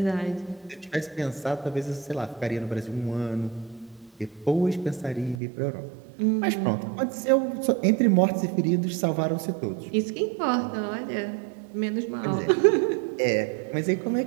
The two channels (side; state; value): left; drops out; at 5.4 s